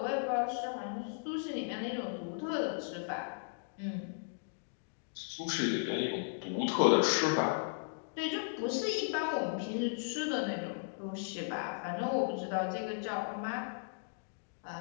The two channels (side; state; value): right; silent; digital silence